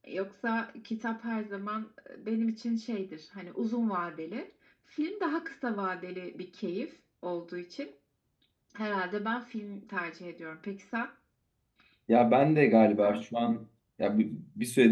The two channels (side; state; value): both; identical; correlation 1.00